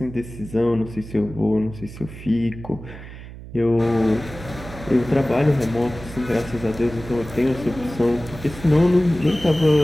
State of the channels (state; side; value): noise; right; hum, 14 dB below the sound